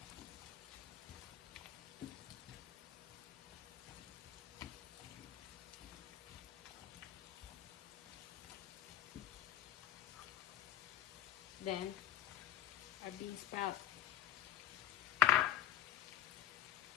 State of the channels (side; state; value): right; quieter; 13.0 dB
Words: Then our bean sprout.